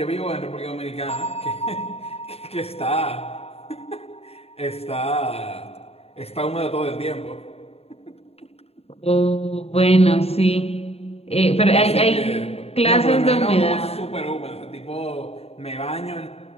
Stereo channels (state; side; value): late; right; 0.29 ms